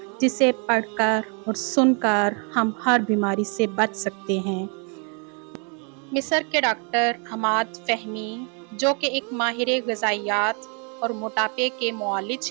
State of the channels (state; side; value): quieter; left; 36.9 dB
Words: جسے پڑھ کر اور سن کر ہم ہر بیماری سے بچ سکتے ہیں۔ مصر کے ڈاکٹر عماد فہمی، جو کہ ایک ماہر غذائیت اور موٹاپے کے معالج